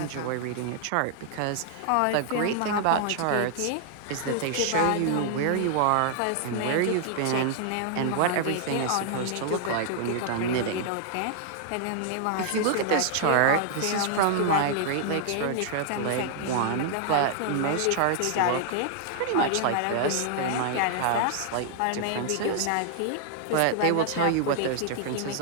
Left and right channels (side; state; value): both; different; correlation 0.00